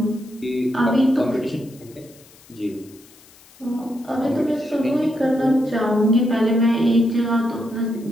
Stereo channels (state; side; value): noise; left; hiss, 25 dB below the sound